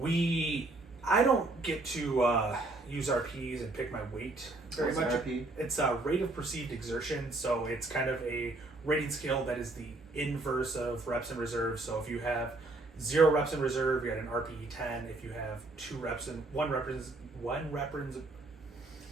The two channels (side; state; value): left; quieter; 3.0 dB